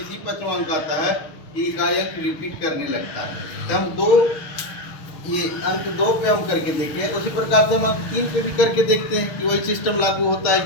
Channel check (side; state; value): right; late; 6.5 ms